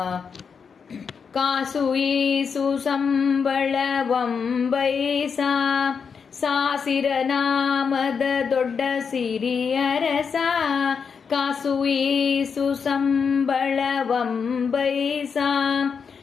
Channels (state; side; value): quieter; right; 6.1 dB